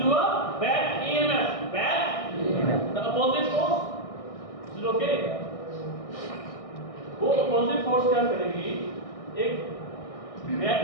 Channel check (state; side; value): late; right; 1.6 ms